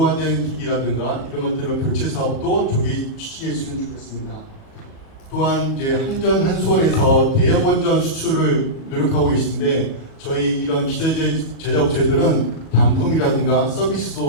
기기라든가 이런 것들은 교체 사업도 조기 추진했으면 좋겠습니다. 또한 이제 한전 한수원에서 대형 원전 수출을 노력하고 계신데 저희 이런 기저제 제작업체들은 반품이라든가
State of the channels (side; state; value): right; late; 37 ms